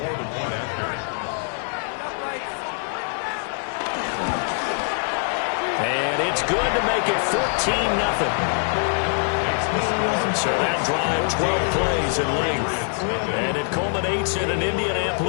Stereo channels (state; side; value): silent; right; 55 dB below the other